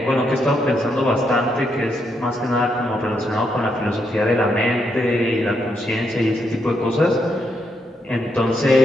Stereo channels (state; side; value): normal; both; correlation 0.79